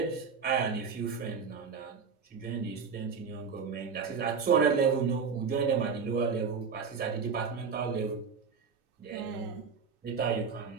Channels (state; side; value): quieter; left; 5.7 dB